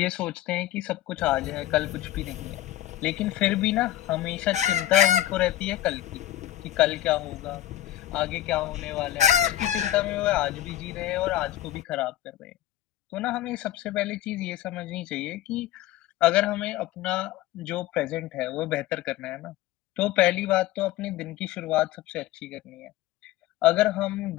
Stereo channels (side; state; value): right; quieter; 13.8 dB